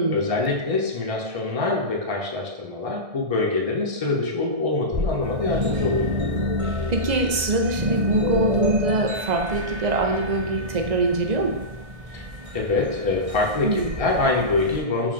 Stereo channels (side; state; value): left; late; 1.6 ms